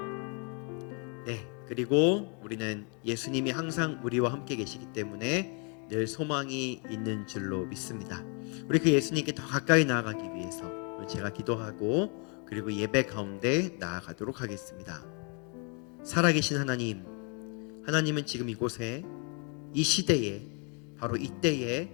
네, 그리고 우리는 예수님이 항상 우리와 함께 계시기 때문에 늘 소망이 있는 줄로 믿습니다. 우리 그 예수님께 더 가까이 나아가기 위해서 제가 기도하고 그리고 예배 가운데 나아가도록 하겠습니다. 살아계신 하나님, 하나님은 지금 이곳에, 이 시대에, 바로 이때에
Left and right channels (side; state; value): right; quieter; 36.4 dB